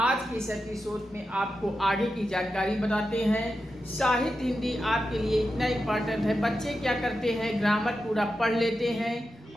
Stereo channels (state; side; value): normal; both; correlation 0.90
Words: के इस एपिसोड में आपको आगे की जानकारी बताते हैं। साहित्य हिंदी आपके लिए इतना इम्पॉर्टेंट है। बच्चे क्या करते हैं, ग्रामर पूरा पढ़ लेते हैं